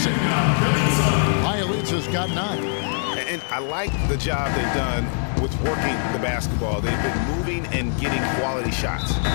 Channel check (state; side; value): silent; right; 64 dB below the other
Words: it. Bjelica's got 9. And I like the job they've done with working the basketball. They've been moving and getting quality shots.